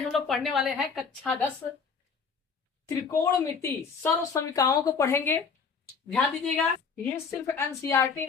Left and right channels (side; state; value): right; quieter; 5.6 dB